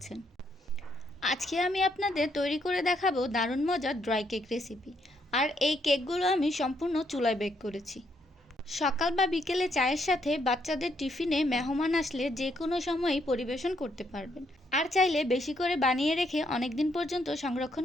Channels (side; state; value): both; normal; correlation 0.74